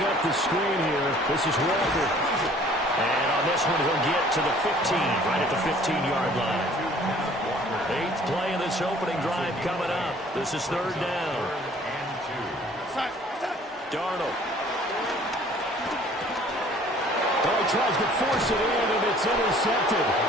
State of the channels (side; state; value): both; normal; correlation 0.54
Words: up the screen here. This is Walker. And on this one, he'll get to the 15, right at the 15-yard line. 8th play of this opening drive coming up. This is 3rd down. Darnold. Oh, he tries to force it in, and it's intercepted.